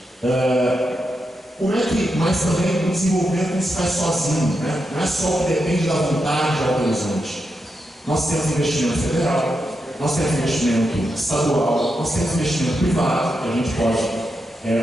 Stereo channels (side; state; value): both; normal; correlation 0.86